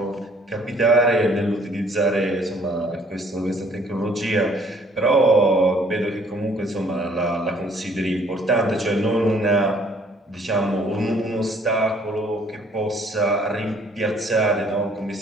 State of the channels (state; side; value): normal; both; correlation 0.61